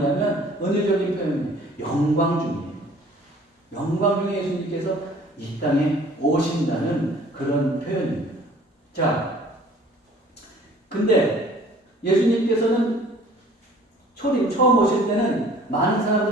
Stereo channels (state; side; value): normal; both; correlation 0.52